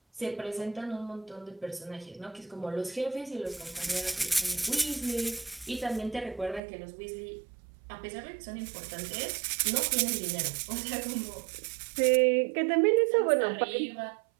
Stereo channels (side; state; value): left; drops out; at 6.6 s